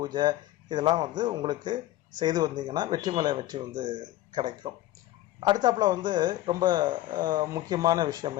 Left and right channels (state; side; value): quieter; right; 14.9 dB